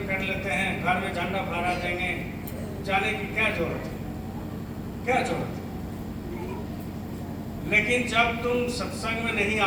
कर लेते हैं, घर में झंडा फहरा देंगे, जाने की क्या जरूरत है, क्या जरूरत है। लेकिन जब तुम सत्संग में नहीं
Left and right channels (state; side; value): identical; both; correlation 1.00